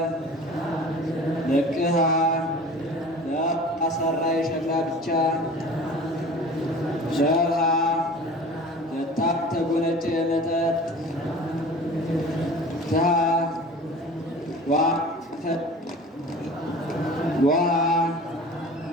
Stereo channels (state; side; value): normal; both; correlation 0.41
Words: ለቅሃ ለአሰራ የሸክላ ብቻ ሸርሃ ለታብ ተጎነጨ የመጠጥ ትሃ ዋ